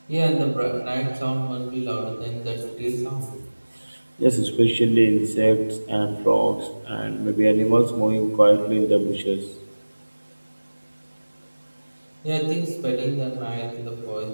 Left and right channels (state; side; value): inverted; both; correlation -1.00